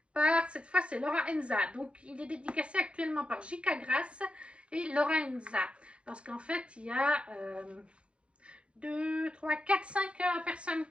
par, cette fois, c'est Laura Enza. Donc, il est dédicacé actuellement par J.K. Grasse et Laura Enza. Parce qu'en fait, il y a 2, 3, 4, 5 personnes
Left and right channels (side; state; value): left; late; 0.058 ms